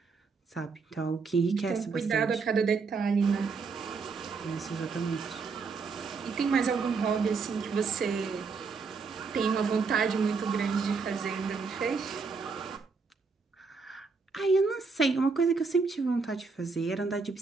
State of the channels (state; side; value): quieter; left; 4.8 dB